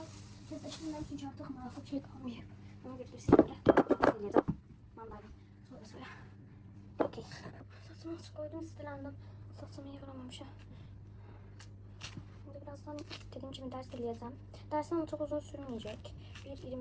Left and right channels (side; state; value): both; identical; correlation 1.00